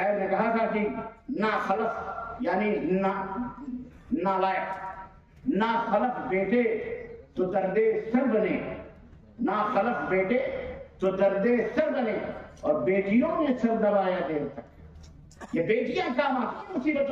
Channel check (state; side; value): identical; both; correlation 1.00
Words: نے کہا تھا کہ نا خلف یعنی نالائق، نا خلف بیٹے تو درد سر بنے، نا خلف بیٹے تو درد سر بنے، اور بیٹیوں نے سر دبایا دیر تک. یہ بیٹیاں کام آتی